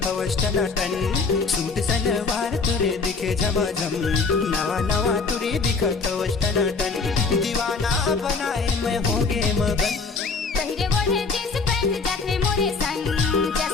टनाटन। सूट सलवार तुरे दिखे झमाझम, नवा नवा टूरी दिखत टनाटन। दीवाना बनाए मैं होगे मगन, पहिरे ओढ़े जींस पैंट जाते मोरे संग।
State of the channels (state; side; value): quieter; right; 4.4 dB